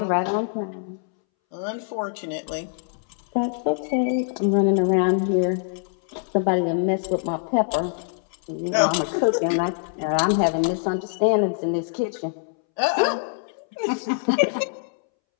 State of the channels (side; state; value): right; silent; 63 dB below the other